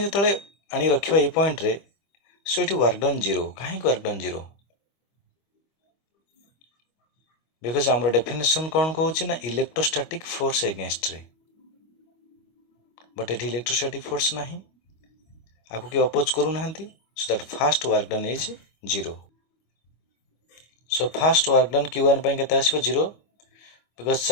जतले आनी रखिबा ए पॉइंट रे सो एठी वर्क डन 0 काहे वर्क डन 0 बिकॉज़ हमर डेफिनेशन कोन कहूची ना इलेक्ट्रोस्टैटिक फोर्स अगेंस्ट रे बट एठी इलेक्ट्रोस्टैटिक फोर्स नाही आको के अपोज करू नाहंती so that first work done is 0 so first work done Q1 पय केता आसीबो 0 बिकज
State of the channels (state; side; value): late; right; 25 ms